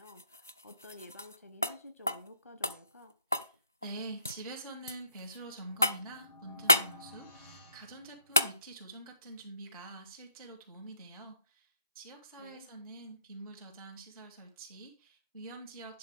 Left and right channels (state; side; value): inverted; both; correlation -0.65